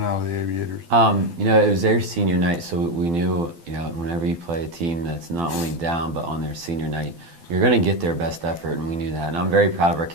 out of the Aviators. It was their senior night, so we knew, whenever you play a team that's not only down, but on their senior night, you're going to get their best effort, and we knew that. And I'm very proud of our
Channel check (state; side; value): late; left; 12 ms